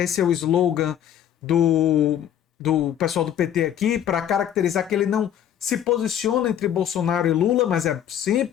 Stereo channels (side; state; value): right; quieter; 10.1 dB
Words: é o slogan do, do pessoal do PT aqui, para caracterizar que ele não se posiciona entre Bolsonaro e Lula, mas é